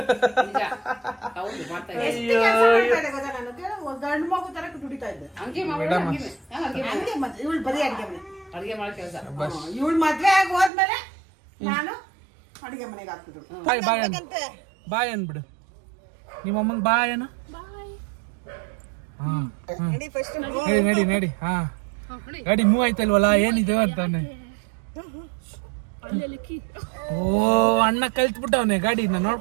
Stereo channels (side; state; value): left; drops out; at 10.7 s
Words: ಹೌದು ಮಾಡ್ತಾ ಗಂಡು ಮಗು ತರ ದುಡಿತಾ ಇದ್ದೆ. ಹಂಗೆ ಇವಳು ಬರೀ ಅಡಿಗೆ ಮನೆ ಅಡಿಗೆ ಮಾಡೋ ಕೆಲಸ. ಇವಳು ಮದ್ವೆ ಆಗಿ ಹೋದ್ಮೇಲೆ ನಾನು ಅಡಿಗೆ ಮನೆಗೆ ಹಾಕ್ತಿದ್ರು. ಬಾಯ್ ಅನ್ಬಿಡು ನಿಮ್ಮ ಅಮ್ಮಂಗ್ ಬಾಯ್ ಅನ್ನ. ನಡಿ ನಡಿ. ಹಾ ಗಾಡಿ ಮೂವ್ ಆಯ್ತಲ್ವಲ್ಲ, ಏನಿದೆ ಅಂತಾನೆ. ಓ ಅಣ್ಣ ಕಲ್ತ್ಬಿಟ್ಟವನೆ ಗಾಡಿನ,